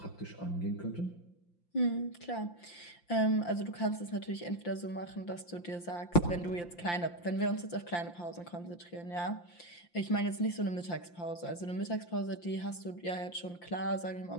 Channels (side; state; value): right; late; 5.8 ms